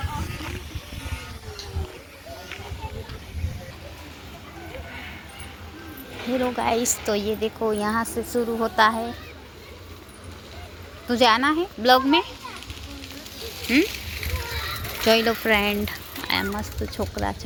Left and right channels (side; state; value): both; identical; correlation 1.00